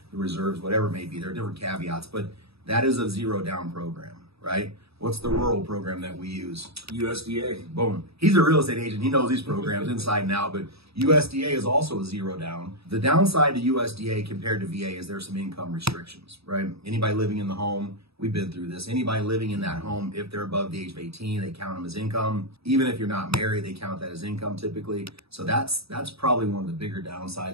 the Reserves, whatever it may be. There are different caveats, but that is a zero down program, right? What's the rural program that we use? USDA. Boom. He's a real estate agent. He knows these programs inside and out, but USDA is also a zero down. The downside to USDA compared to VA is there's some income restrictions, right? Anybody living in the home, we've been through this. Anybody living in that home, if they're above the age of 18, they count them as income. Even if you're not married, they count that as income typically. So that's probably one of the bigger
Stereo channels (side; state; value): left; late; 0.77 ms